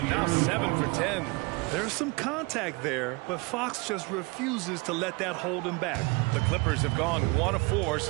Now 7 for 10. There's some contact there, but Fox just refuses to let that hold him back. The Clippers have gone 1 of 4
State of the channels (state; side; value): quieter; left; 26.8 dB